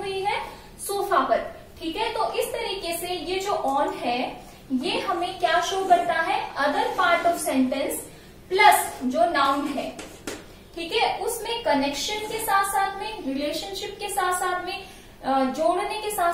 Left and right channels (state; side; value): identical; both; correlation 1.00